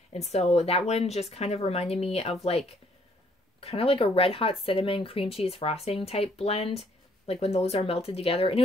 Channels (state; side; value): normal; both; correlation 0.65